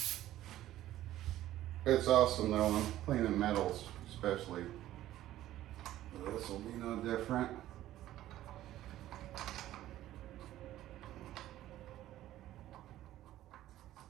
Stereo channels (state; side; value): quieter; left; 13.9 dB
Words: It's awesome though, I'm cleaning metals especially. This will be no different.